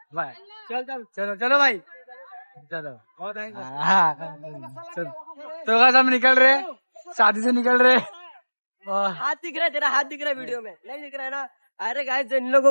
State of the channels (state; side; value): inverted; both; correlation -1.00